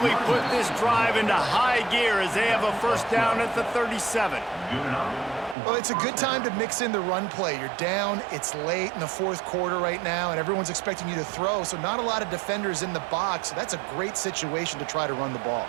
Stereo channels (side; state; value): left; drops out; at 5.6 s